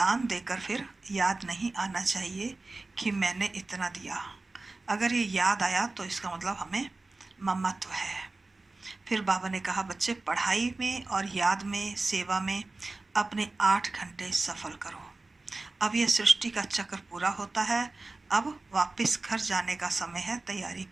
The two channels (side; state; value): left; quieter; 3.3 dB